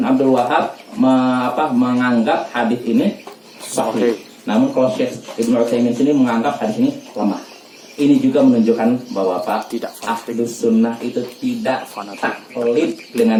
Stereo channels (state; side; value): identical; both; correlation 1.00